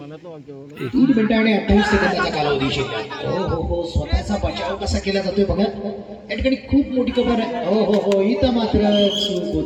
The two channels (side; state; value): both; identical; correlation 1.00